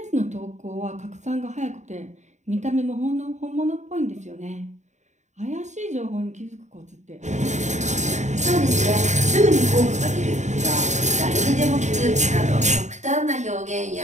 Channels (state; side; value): late; left; 0.34 ms